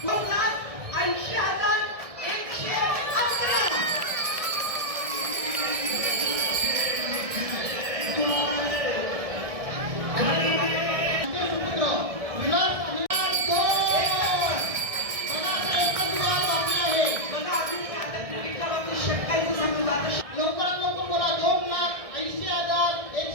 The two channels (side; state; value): left; late; 1.6 ms